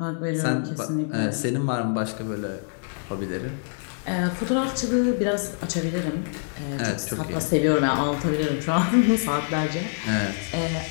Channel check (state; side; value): silent; right; digital silence